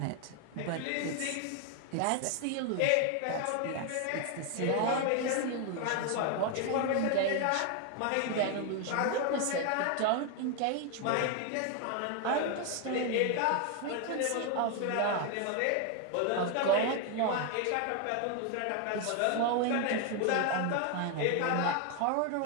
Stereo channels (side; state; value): both; different; correlation 0.01